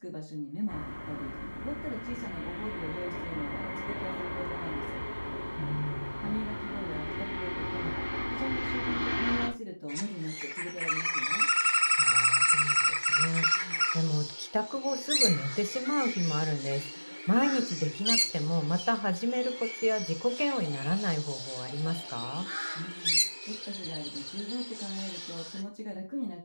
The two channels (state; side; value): inverted; both; correlation -1.00